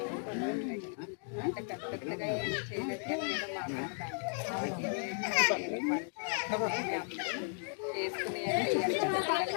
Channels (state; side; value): silent; right; 54 dB below the other